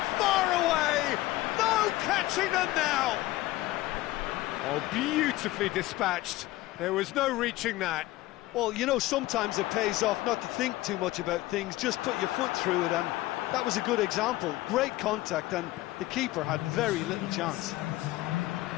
far away! No catching them now! Oh, beautifully dispatched. There was no reaching that. Well, you know, sometimes it pays off not to think too much about things, just put your foot through it, and that was a good example. Great contact, and the keeper had very little chance.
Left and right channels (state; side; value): quieter; right; 17.7 dB